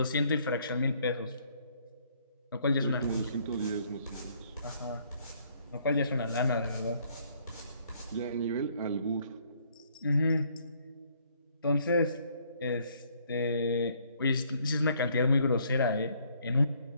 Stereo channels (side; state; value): both; inverted; correlation -0.65